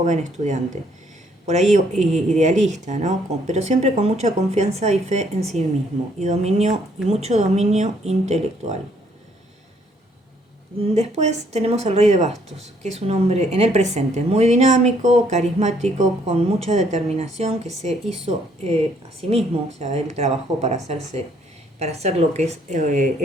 estudiante. Por ahí idealista, ¿no? Pero siempre con mucha confianza y fe en sí mismo y mucho dominio intelectual. Después tenemos al rey de bastos, que es un hombre en el presente, muy dinámico, carismático, con mucha determinación, que se hizo a sí mismo, o sea, él trabajó para hacer lo que es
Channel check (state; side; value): normal; both; correlation 0.67